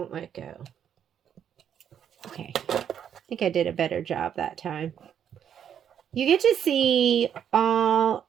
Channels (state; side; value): quieter; left; 8.8 dB